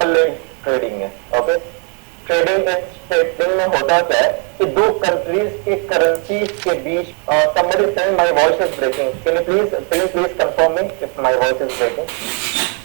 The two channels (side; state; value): left; quieter; 38.8 dB